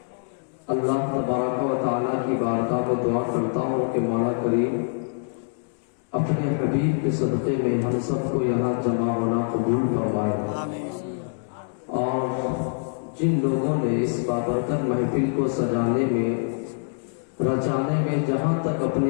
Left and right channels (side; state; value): right; silent; digital silence